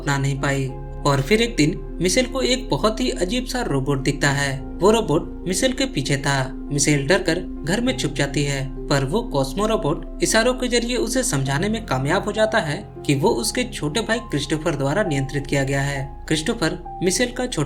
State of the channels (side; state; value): both; identical; correlation 1.00